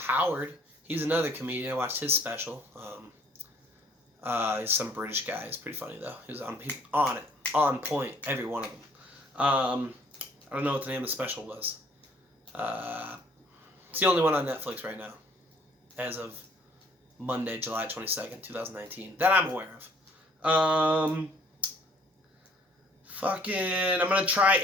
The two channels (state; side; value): normal; both; correlation 0.59